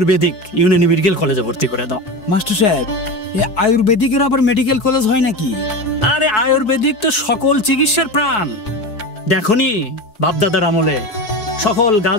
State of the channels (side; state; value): right; late; 4.7 ms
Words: ইউনানি মেডিকেল কলেজে ভর্তি করে দাও। মাস্টার সাহেব, এই আয়ুর্বেদিকের আবার মেডিকেল কলেজ হয় নাকি? আরে আয়ুর্বেদিক তো সকল চিকিৎসার প্রাণ। দেখনি বাপদাদার আমলে সকল